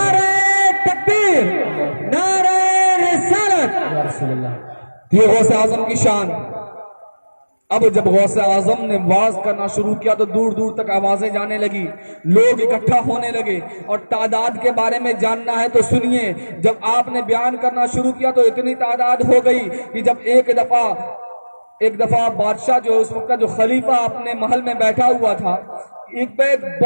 تکبیر، نعرہ رسالت۔ یہ غوث اعظم کی شان۔ اب جب غوث اعظم نے واز کرنا شروع کیا تو دور دور تک آوازیں جانے لگی، لوگ اکٹھا ہونے لگے، اور تعداد کے بارے میں جاننا ہے تو سنیے، جب آپ نے بیان کرنا شروع کیا تو اتنی تعداد ہو گئی کہ جب ایک دفعہ بادشاہ جو اس وقت کا جو خلیفہ اپنے محل میں بیٹھا ہوا تھا، ایک پہ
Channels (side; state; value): both; inverted; correlation -1.00